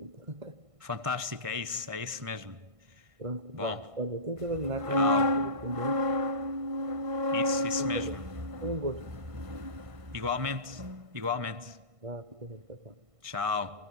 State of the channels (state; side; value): late; left; 1.5 ms